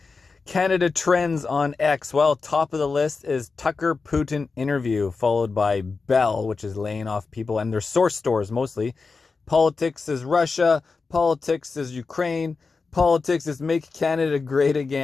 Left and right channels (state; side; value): quieter; right; 4.4 dB